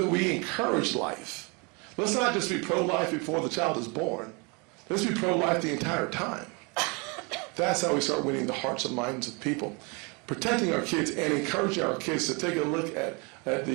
we encourage life? Let's not just be pro-life before the child is born. Let's be pro-life the entire time. That's how we start winning the hearts and minds of people. Protecting our kids and encouraging our kids to take a look at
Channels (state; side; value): quieter; left; 30.9 dB